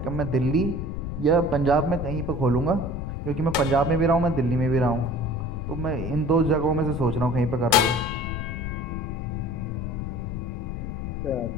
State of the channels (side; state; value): left; noise; rumble, 5 dB below the sound